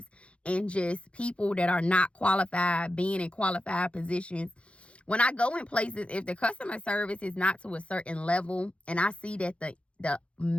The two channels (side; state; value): right; late; 0.061 ms